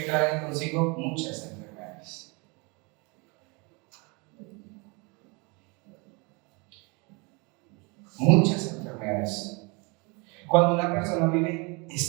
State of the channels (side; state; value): left; quieter; 29.7 dB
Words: traen consigo muchas enfermedades. Muchas enfermedades. Cuando una persona vive